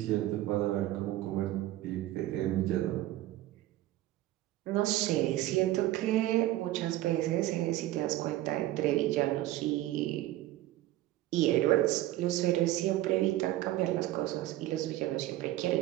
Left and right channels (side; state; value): left; quieter; 15.4 dB